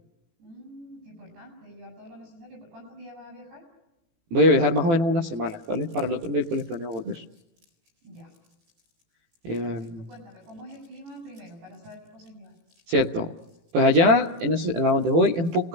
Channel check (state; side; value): late; left; 18 ms